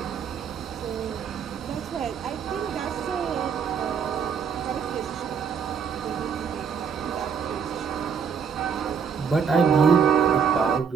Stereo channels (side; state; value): left; quieter; 6.7 dB